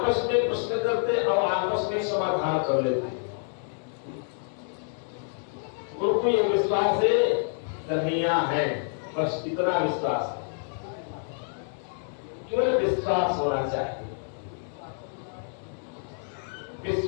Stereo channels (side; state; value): right; silent; 59 dB below the other